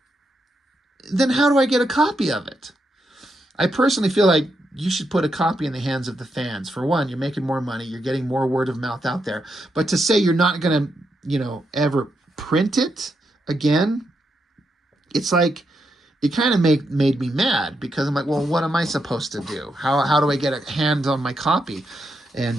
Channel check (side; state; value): both; normal; correlation 0.82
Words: then how do I get a copy of it? I personally feel like you should put a copy in the hands of the fans. For one, you're making more money. You're getting more word of mouth out there. But to say you're not going to, you know, ever print it again, it's like, it kind of made me mad because I'm like, well, what am I supposed to do? How do I get a hand on my copy?